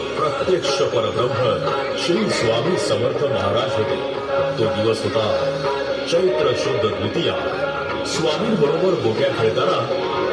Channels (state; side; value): identical; both; correlation 1.00